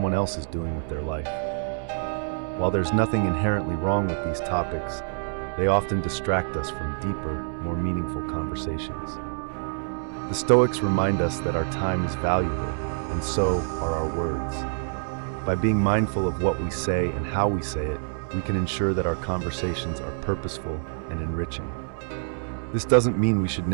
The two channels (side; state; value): left; silent; 61 dB below the other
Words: else is doing with their life. While there's nothing inherently wrong with these topics, they often distract us from deeper, more meaningful conversations. The Stoics remind us that our time is valuable, and so are our words. By being mindful of what we say and how we say it, we can ensure that our conversations are purposeful and enriching. This doesn't mean we should